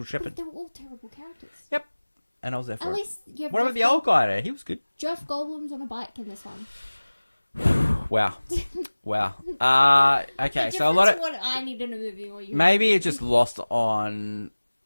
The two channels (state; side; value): inverted; both; correlation -1.00